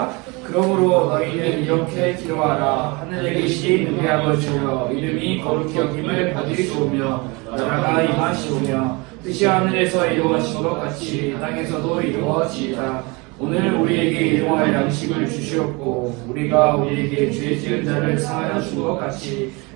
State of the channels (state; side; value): quieter; left; 27.1 dB